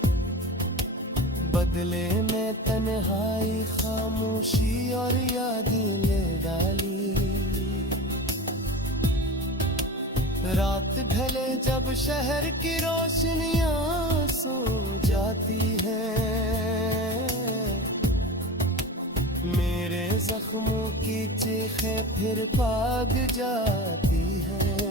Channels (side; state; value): both; normal; correlation 0.31